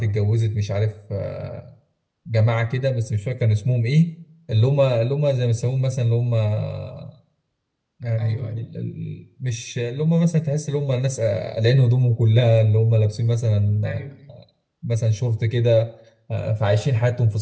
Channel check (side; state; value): both; identical; correlation 1.00